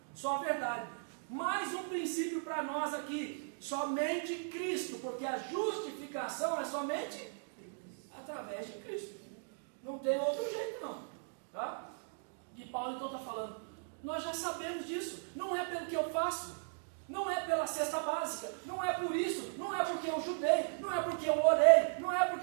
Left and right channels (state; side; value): silent; left; digital silence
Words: só a verdade. Mais um princípio para nós aqui, somente Cristo, porque a justificação é somente através de Cristo. Não tem outro jeito não. Tá? E Paulo então está falando, nós já sabemos disso, não é pelo que eu faço, não é pela cesta básica, não é por isso, não é porque eu judei, não é porque eu orei, não é porque